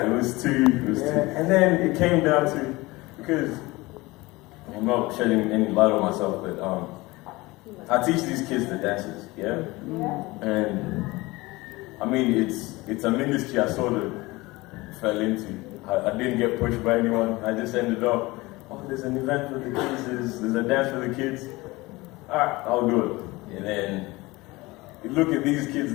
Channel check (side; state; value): right; quieter; 21.6 dB